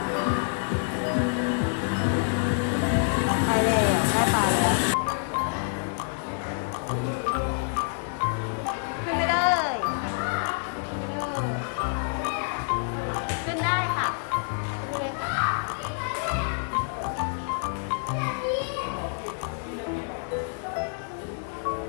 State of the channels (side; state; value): right; silent; 60 dB below the other